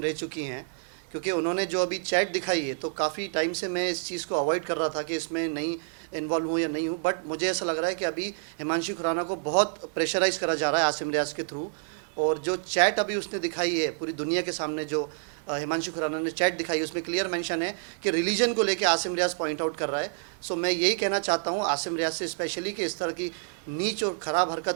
रह चुकी हैं, क्योंकि उन्होंने जो अभी चैट दिखाई है, तो काफ़ी टाइम से मैं इस चीज़ को अवॉइड कर रहा था कि इसमें नहीं इन्वॉल्व हूँ या नहीं हूँ, बट मुझे ऐसा लग रहा है कि अभी हिमांशी खुराना को बहुत प्रेशराइज़ करा जा रहा है आसिम रियाज़ के थ्रू। और जो चैट अभी उसने दिखाई है पूरी दुनिया के सामने, जो हिमांशी खुराना ने चैट दिखाई है, उसमें क्लियर मेंशन है कि रिलीजन को लेके आसिम रियाज़ पॉइंट आउट कर रहा है। सो मैं यही कहना चाहता हूँ आसिम रियाज़ से स्पेशली कि इस तरह की नीच और ख़राब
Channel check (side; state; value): left; silent; 59 dB below the other